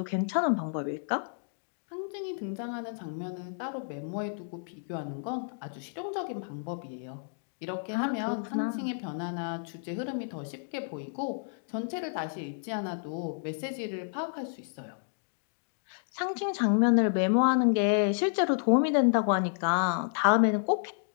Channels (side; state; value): right; silent; digital silence